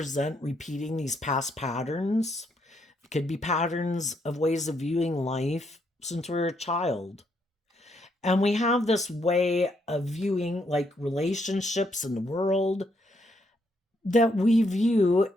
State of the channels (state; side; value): normal; both; correlation 0.75